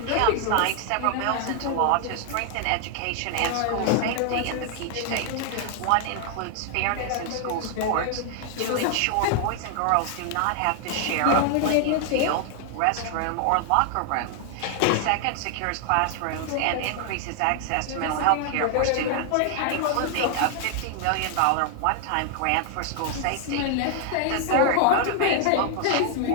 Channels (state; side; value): different; both; correlation 0.00